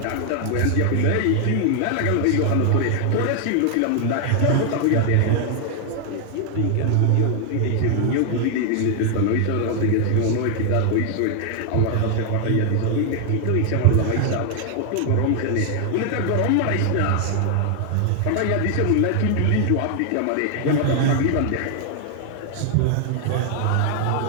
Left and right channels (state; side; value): different; both; correlation 0.00